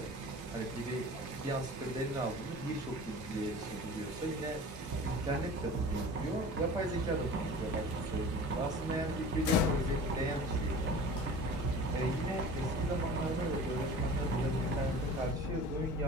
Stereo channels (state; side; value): normal; both; correlation 0.40